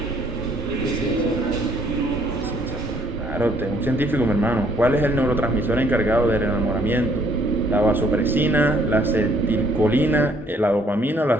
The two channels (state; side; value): normal; both; correlation 0.64